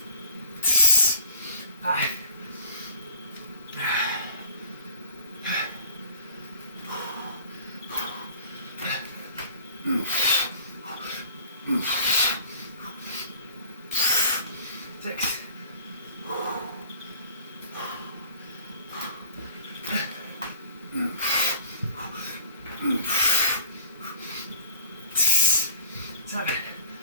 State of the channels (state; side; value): inverted; both; correlation -0.46